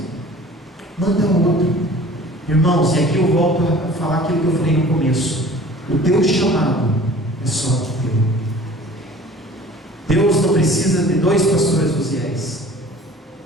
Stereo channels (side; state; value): both; normal; correlation 0.46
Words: manda outro. Irmãos, e aqui eu volto a falar aquilo que eu falei no começo: o teu chamado é só teu. Deus não precisa de 2 pastores Uziéis,